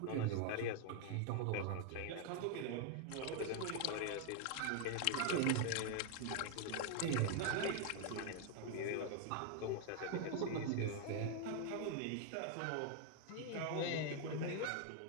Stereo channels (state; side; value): different; both; correlation 0.00